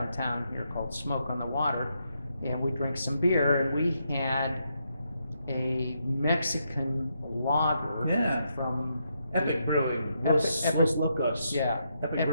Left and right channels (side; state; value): both; inverted; correlation -0.80